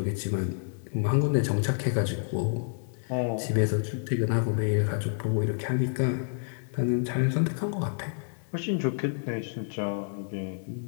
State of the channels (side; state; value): right; silent; digital silence